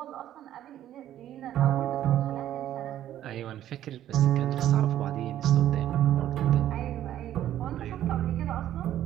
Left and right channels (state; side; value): quieter; left; 12.0 dB